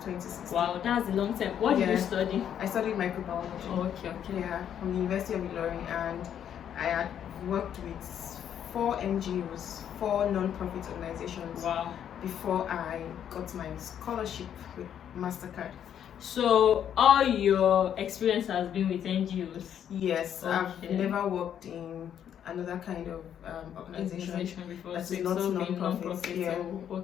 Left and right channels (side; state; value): right; quieter; 9.4 dB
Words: 2016. Wow, that's a long time. What did you study? I studied microbiology. Oh, okay. Yeah, from the University of Ilorin, and I had worked with 4 NGOs, 4 non-profit organizations. Wow. Before I got my scholarship with Mastercard. So all your experience has been with NGOs? Yes, okay. I've never worked in another kind of organization before. that's so not non-profit. Yeah. So,